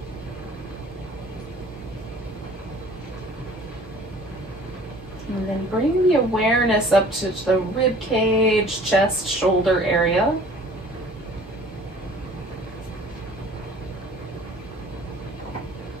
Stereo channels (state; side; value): normal; both; correlation 0.50